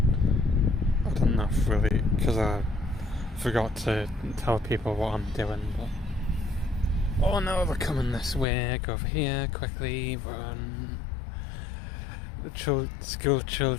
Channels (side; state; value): right; drops out; at 8.5 s